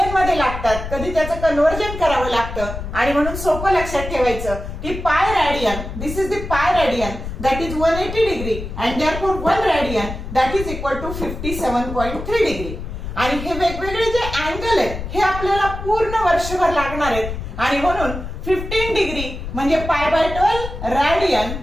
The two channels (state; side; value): noise; left; rumble, 8 dB below the sound